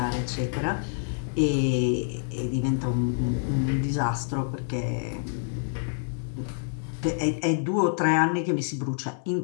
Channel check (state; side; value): silent; right; 60 dB below the other